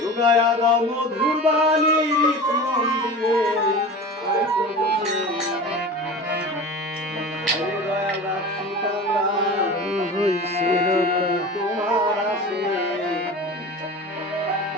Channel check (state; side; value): normal; both; correlation 0.33